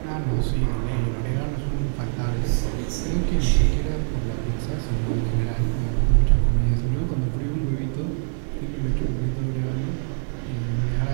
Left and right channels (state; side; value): silent; left; digital silence